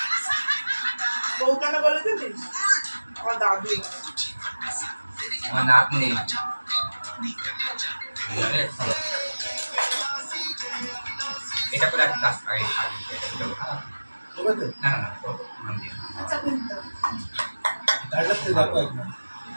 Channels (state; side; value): inverted; both; correlation -1.00